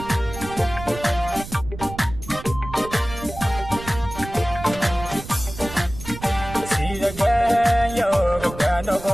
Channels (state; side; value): noise; right; rumble, 12 dB below the sound